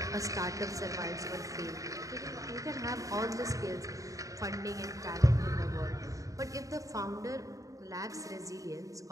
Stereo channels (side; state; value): left; late; 0.16 ms